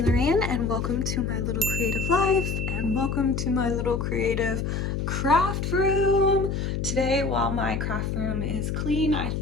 and welcome to my little creative life and welcome to my little creative craft room. Today, while my craft room is clean, I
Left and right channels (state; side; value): noise; left; hum, 1 dB below the sound